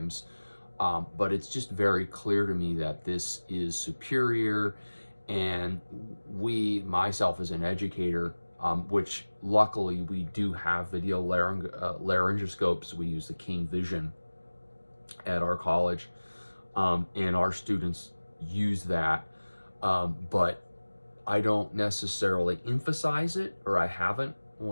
but it's just very clear to me that this is superior, and myself as an educator, which luckily we do have video laryngoscopes. We use the King Vision at our college, and our students use that, but I don't necessarily emphasize it, or I haven't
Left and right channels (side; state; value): both; inverted; correlation -1.00